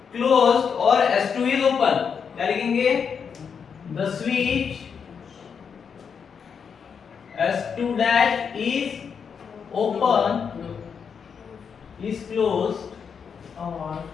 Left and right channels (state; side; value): quieter; right; 6.6 dB